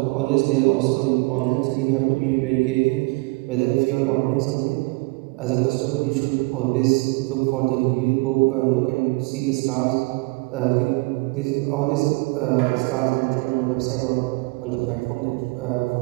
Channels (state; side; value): quieter; left; 26.7 dB